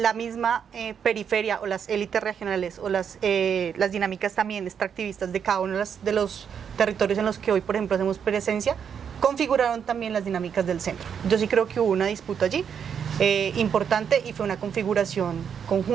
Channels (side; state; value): left; quieter; 7.6 dB